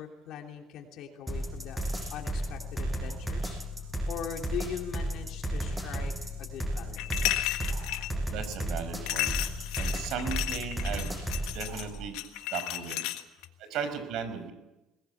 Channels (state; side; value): normal; both; correlation 0.60